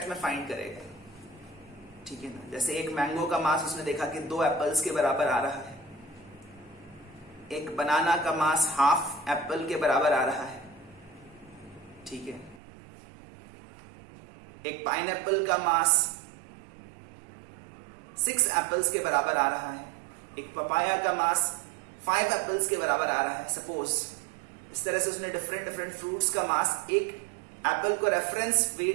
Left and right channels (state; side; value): drops out; left; at 12.6 s